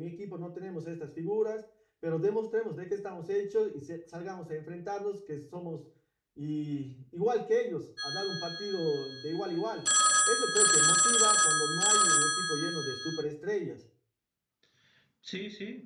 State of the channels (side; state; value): both; identical; correlation 1.00